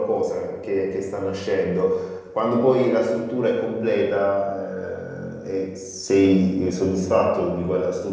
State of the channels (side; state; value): both; identical; correlation 1.00